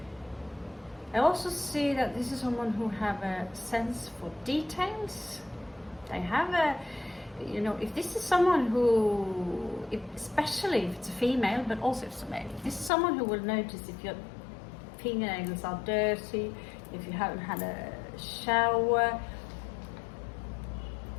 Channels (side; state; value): right; drops out; at 12.9 s